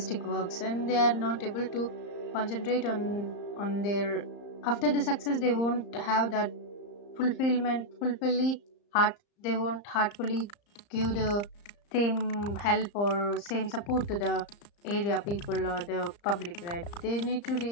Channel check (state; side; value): late; right; 34 ms